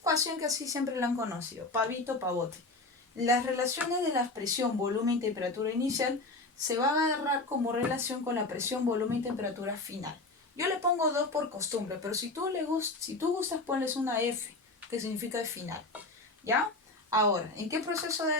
que así siempre la han conocido, pavito, pavote. Las relaciones de la presión, volumen y temperatura inicial se van a agarrar como relación con la presión, volumen y temperatura final. Yo le pongo 2 por costumbre, pero si tú gustas, ponles una F, que significa el final. ¿Ya? Ahora, ¿en qué proceso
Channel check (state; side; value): quieter; right; 3.1 dB